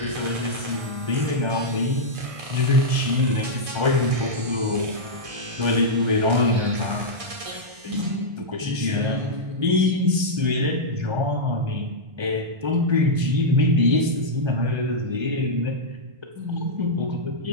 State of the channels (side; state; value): left; late; 1.3 ms